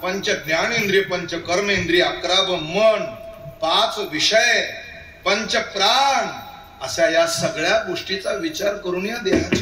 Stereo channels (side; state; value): both; identical; correlation 1.00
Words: पंच ज्ञानेंद्रिय, पंच कर्मेंद्रिय, 11 मन, 5 विषय, पंच प्राण, अशा या सगळ्या गोष्टीचा विचार करून या